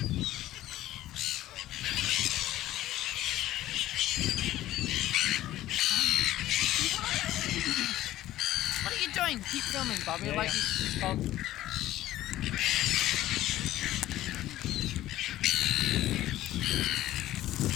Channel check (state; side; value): quieter; right; 14.5 dB